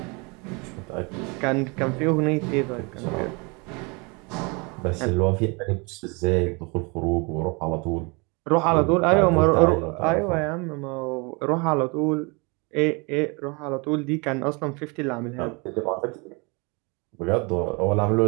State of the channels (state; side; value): quieter; left; 29.7 dB